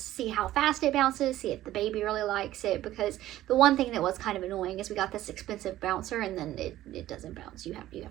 how fast it bounces, see if the baby really likes it. Because the one thing that was kind of annoying is we got this expensive bouncer and then it doesn't bounce. You have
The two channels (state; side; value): quieter; left; 14.3 dB